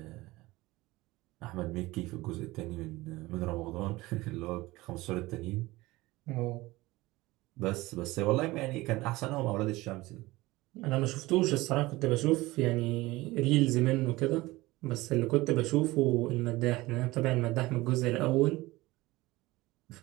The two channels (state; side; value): quieter; left; 19.8 dB